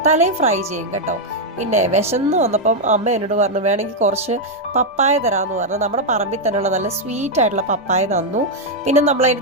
തലയും ഫ്രൈ ചെയ്യും കേട്ടോ. പിന്നെ വിശന്ന് വന്നപ്പം അമ്മ എന്നോട് പറഞ്ഞു വേണമെങ്കിൽ കുറച്ച് പപ്പായ തരാമെന്ന് പറഞ്ഞു. നമ്മുടെ പറമ്പിൽ തന്നെയുള്ള നല്ല സ്വീറ്റ് ആയിട്ടുള്ള പപ്പായ തന്നു. പിന്നെ നമ്മളതിൻ്റെ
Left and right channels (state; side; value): normal; both; correlation -0.01